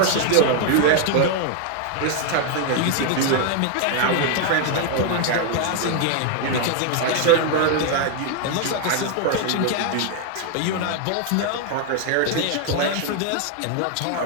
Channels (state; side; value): different; both; correlation 0.00